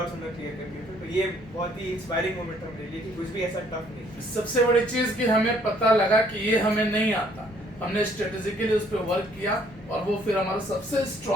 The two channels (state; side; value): normal; both; correlation 0.63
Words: उन्होंने क्लियर कर दिए थे। तो ये बहुत ही इंस्पायरिंग मोमेंट था मेरे लिए कि कुछ भी ऐसा टफ नहीं। सबसे बड़ी चीज कि हमें पता लगा कि ये हमें नहीं आता, हमने स्ट्रेटेजिकली उस पर वर्क किया और वो फिर हमारा सबसे